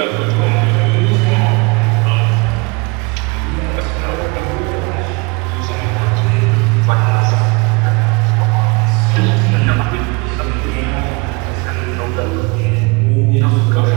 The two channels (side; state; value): left; quieter; 28.0 dB